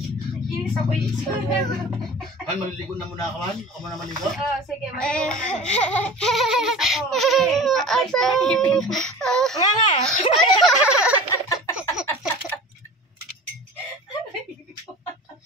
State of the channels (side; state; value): both; normal; correlation 0.38